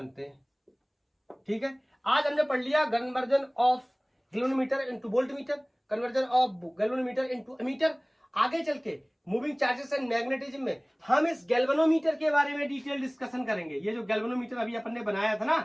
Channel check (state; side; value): identical; both; correlation 1.00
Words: हैं। ठीक है, आज हमने पढ़ लिया conversion of galvanometer into voltmeter, conversion of galvanometer into ammeter. आगे चल के मूविंग चार्जेस एंड मैग्नेटिज्म में हम इस गैल्वेनोमीटर के बारे में डिटेल डिस्कशन करेंगे। ये जो गैल्वेनोमीटर अभी अपन ने बनाया था